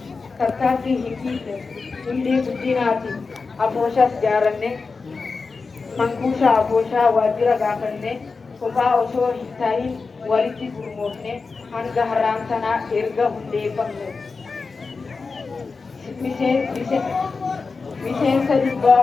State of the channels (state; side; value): quieter; right; 4.4 dB